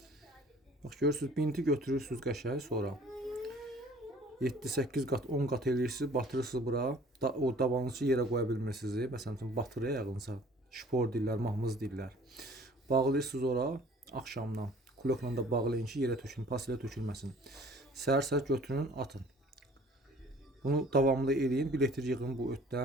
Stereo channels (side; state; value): both; normal; correlation 0.52